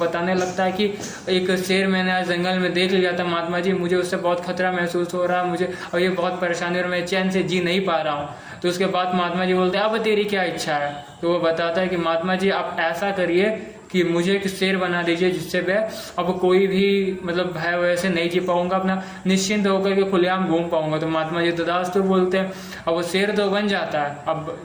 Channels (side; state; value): both; identical; correlation 1.00